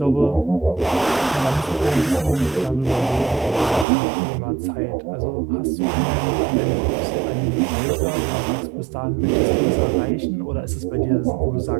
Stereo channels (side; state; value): left; drops out; at 3.9 s